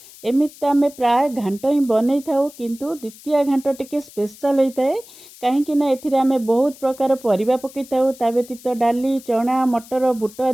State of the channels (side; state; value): left; noise; hiss, 21 dB below the sound